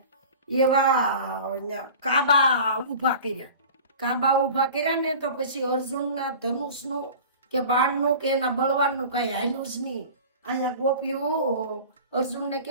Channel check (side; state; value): both; inverted; correlation -0.39